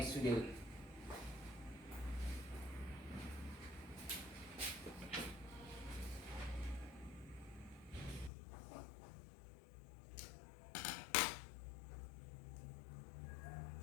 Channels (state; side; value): drops out; right; at 8.3 s